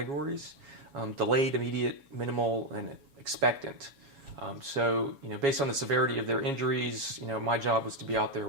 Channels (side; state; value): left; late; 7.2 ms